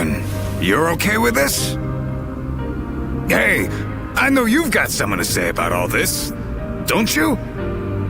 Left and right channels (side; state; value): both; identical; correlation 1.00